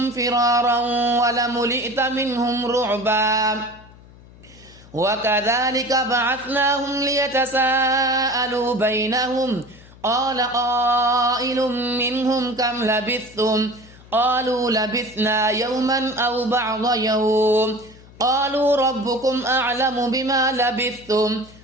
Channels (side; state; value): left; noise; hum, 22 dB below the sound